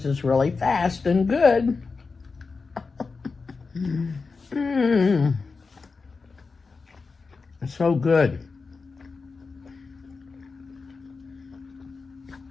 is really fast and good. It's so good.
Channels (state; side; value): quieter; right; 4.4 dB